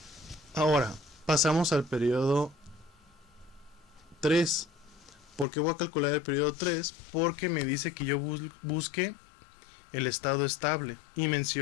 Ahora pasamos al periodo 3. ¿Por qué voy a calcular el periodo 3? Porque me dice que yo busque el estado estable y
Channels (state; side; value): drops out; right; at 5.5 s